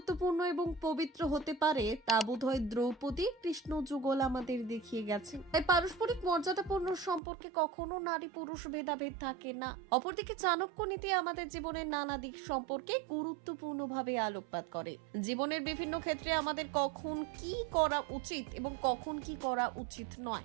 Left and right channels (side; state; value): left; drops out; at 7.2 s